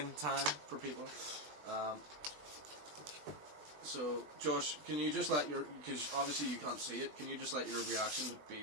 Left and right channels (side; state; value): left; late; 20 ms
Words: time for people. So, Josh, can you just let because obviously you can't see it, can you just let your reaction to be